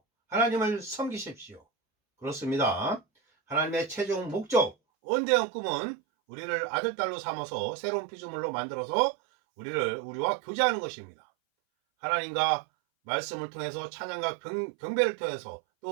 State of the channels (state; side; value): drops out; left; at 4.8 s